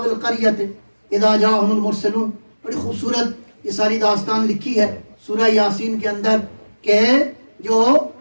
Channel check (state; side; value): inverted; both; correlation -1.00